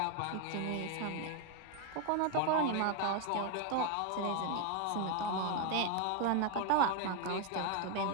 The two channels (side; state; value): both; different; correlation 0.01